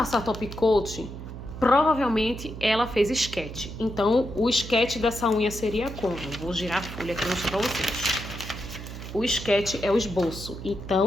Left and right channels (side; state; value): right; noise; hum, 10 dB below the sound